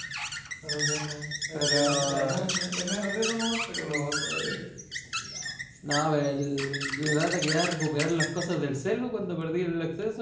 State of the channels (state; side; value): identical; both; correlation 1.00